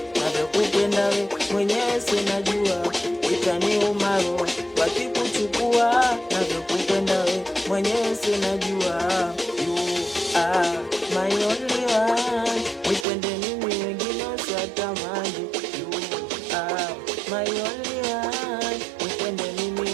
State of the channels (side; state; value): left; drops out; at 13.1 s